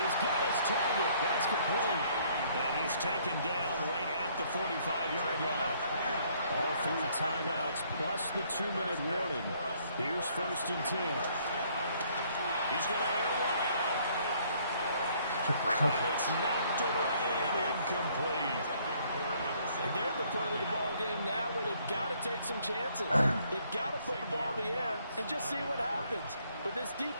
got his target. That's complete. And he's taken down right at the 45-yard line. All 3 timeouts plus the 2-minute warning. Here's 1st and 10. He's going to air one out. And it's knocked away and incomplete. And they're at the point of the ball game now where they've got to take some chances. They've got to put the ball in the air and just see what happens. But this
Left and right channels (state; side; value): inverted; both; correlation -0.64